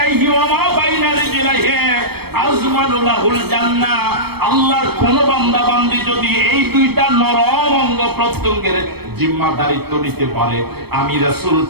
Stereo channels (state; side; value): late; left; 0.97 ms